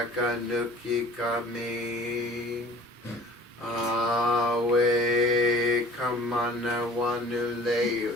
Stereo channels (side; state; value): both; normal; correlation 0.46